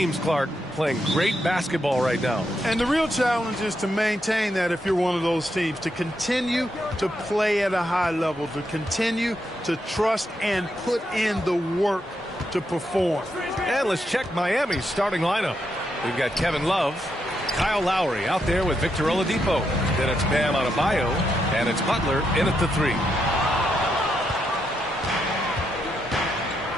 Clark, playing great basketball right now. And the real challenge is to maintain that if you're one of those teams, to continue to play at a high level, to continue to trust and put in the work to perform. And let's check Miami's starting lineup. We've got Kevin Love, Kyle Lowry out there with Victor Oladipo. Then it's Bam Adebayo, and it's Butler in at the 3.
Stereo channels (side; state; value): both; normal; correlation 0.81